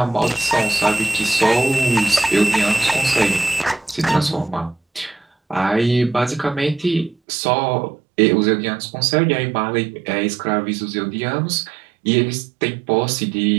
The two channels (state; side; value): drops out; left; at 7.2 s